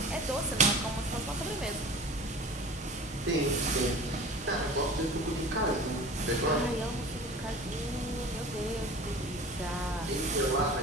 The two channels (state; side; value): normal; both; correlation 0.39